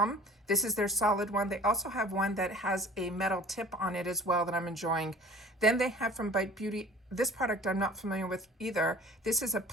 This is their solid one. They also have one that has a metal tip on it as well that I'm enjoying. Then they have from Bite Beauty, this product I'm not familiar with either. This is a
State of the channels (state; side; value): normal; both; correlation 0.47